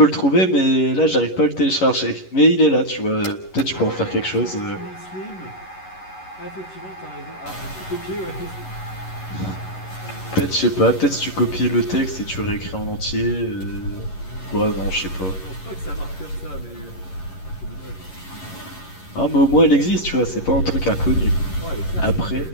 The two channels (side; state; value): right; late; 11 ms